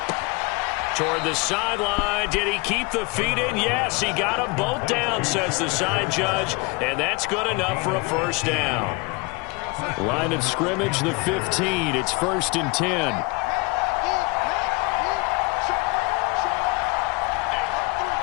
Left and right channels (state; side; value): quieter; right; 26.9 dB